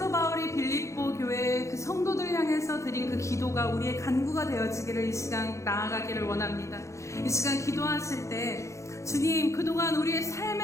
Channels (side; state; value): right; late; 0.15 ms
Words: 바울이 빌립보 교회 그 성도들 향해서 드린 그 기도가 우리의 간구가 되어지기를 이 시간 나아가기를 원합니다. 이 시간 기도하실 때 주님, 그동안 우리의